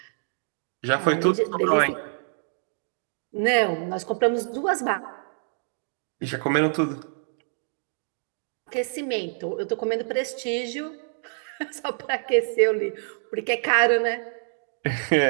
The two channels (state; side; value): silent; left; digital silence